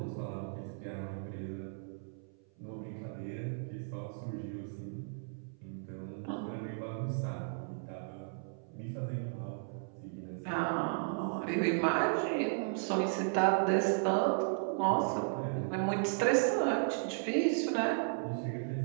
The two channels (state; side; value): silent; left; 54 dB below the other